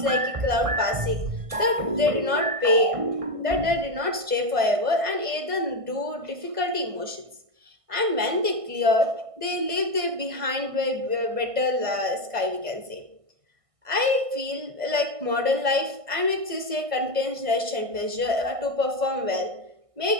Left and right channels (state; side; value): late; left; 1.5 ms